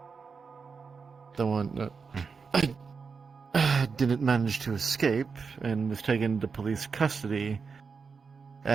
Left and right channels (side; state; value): left; quieter; 5.3 dB